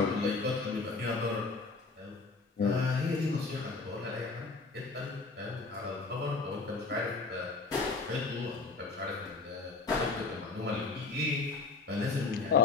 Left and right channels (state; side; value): quieter; right; 4.0 dB